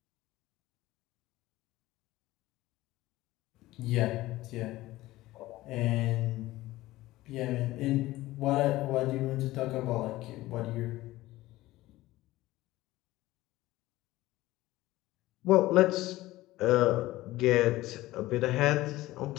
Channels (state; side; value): quieter; right; 17.4 dB